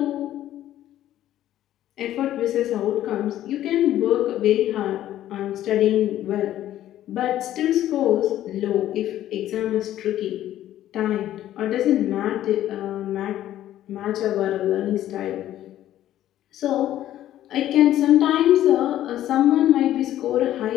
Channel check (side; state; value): right; quieter; 12.8 dB